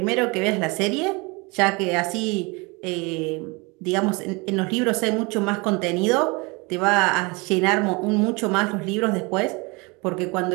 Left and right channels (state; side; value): quieter; left; 27.5 dB